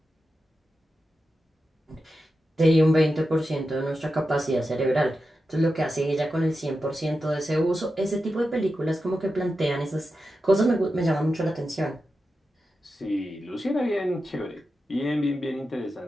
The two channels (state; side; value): normal; both; correlation 0.90